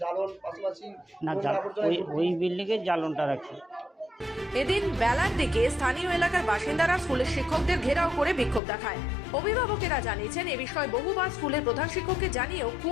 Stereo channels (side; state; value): right; drops out; at 8.6 s